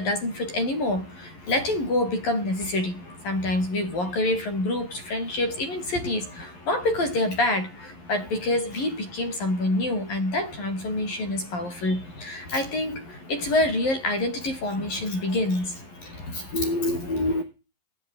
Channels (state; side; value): late; right; 11 ms